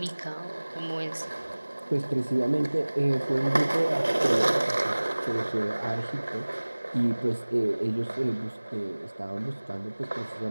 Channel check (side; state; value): both; inverted; correlation -1.00